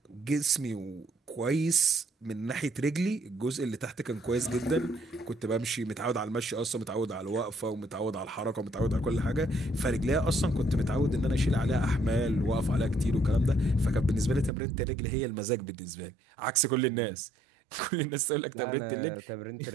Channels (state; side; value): drops out; left; at 14.5 s